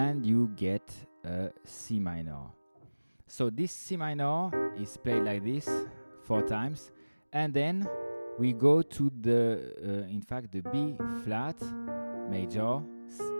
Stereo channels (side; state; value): both; inverted; correlation -1.00